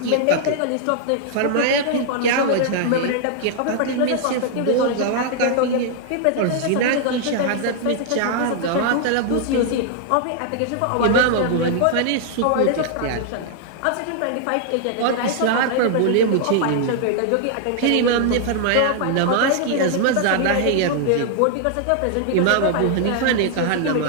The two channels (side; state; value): both; different; correlation -0.01